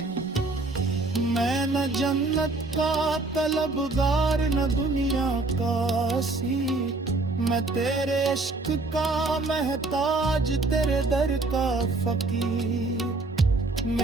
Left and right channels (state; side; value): quieter; left; 3.2 dB